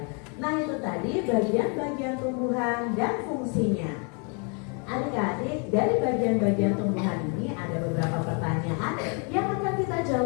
Nah, itu tadi bagian-bagian tumbuhan dan fungsinya. Adik-adik, dari bagian-bagian tumbuhan ini ada beberapa pertanyaan yang akan kita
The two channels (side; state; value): right; quieter; 36.4 dB